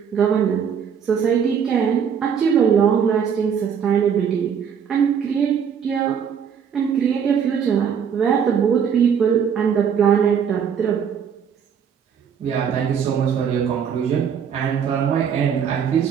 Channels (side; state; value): left; quieter; 7.5 dB